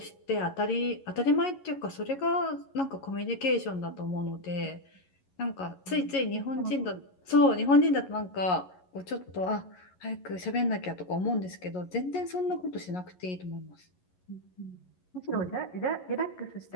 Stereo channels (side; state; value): right; late; 11 ms